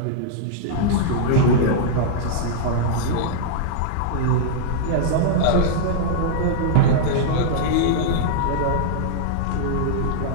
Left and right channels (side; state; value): both; different; correlation -0.01